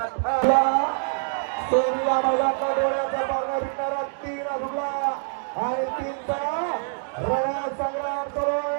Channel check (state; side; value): silent; left; digital silence